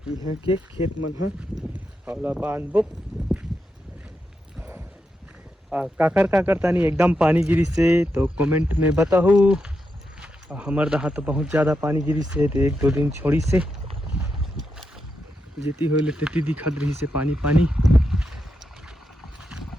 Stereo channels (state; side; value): normal; both; correlation 0.85